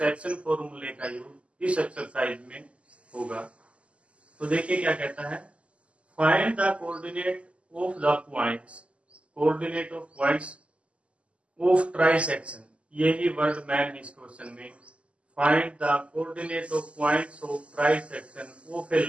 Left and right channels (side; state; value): left; late; 0.059 ms